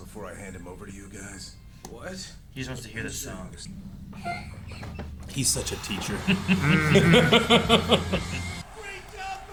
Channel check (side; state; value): both; identical; correlation 1.00